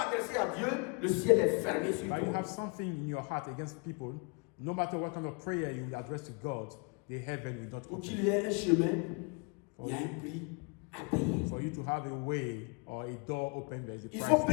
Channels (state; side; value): quieter; right; 33.8 dB